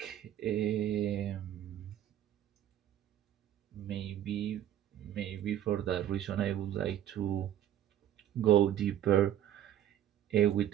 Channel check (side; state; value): left; quieter; 11.3 dB